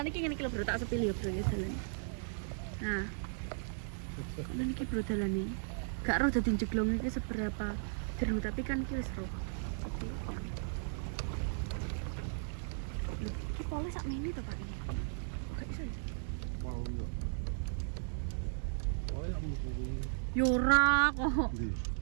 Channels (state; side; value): silent; left; digital silence